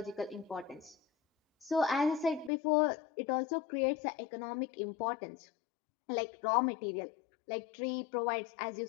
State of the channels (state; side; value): drops out; right; at 2.5 s